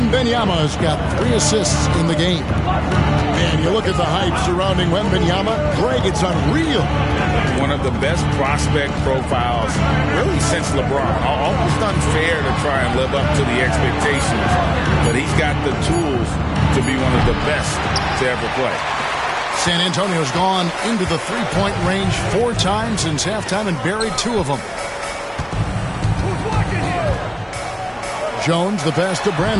got 3 assists in the game. And you look at the hype surrounding Wembanyama. Greg, it's unreal. One of the best prospect profiles really since LeBron. Almost unfair to try and live up to the expectations. But he's got the tools to be one of the best to ever play. San Antonio's gone into the three-point range 4 times since halftime and buried 2 of them. Jones, the pass to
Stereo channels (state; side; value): identical; both; correlation 1.00